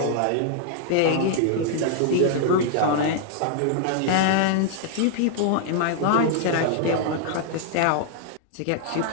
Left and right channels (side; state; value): both; different; correlation -0.01